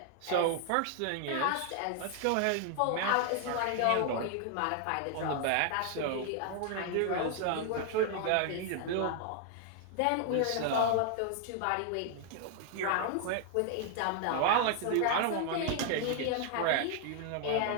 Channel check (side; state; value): both; different; correlation 0.00